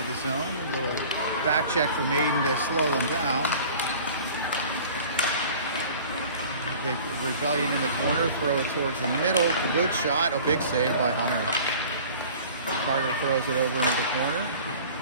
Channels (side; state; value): both; inverted; correlation -0.45